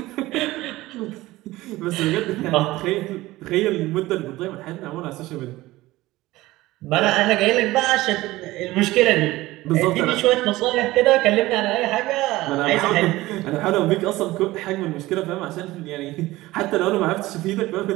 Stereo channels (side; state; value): left; quieter; 18.1 dB